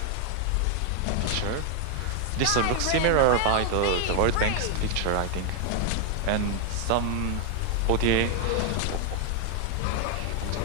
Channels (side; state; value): both; different; correlation 0.00